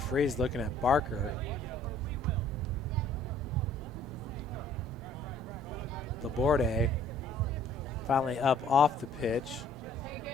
looking at Barker. Laborde finally up off the pitch.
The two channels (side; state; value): both; normal; correlation 0.57